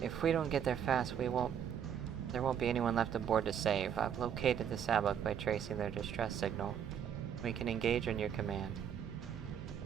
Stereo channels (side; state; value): left; quieter; 8.6 dB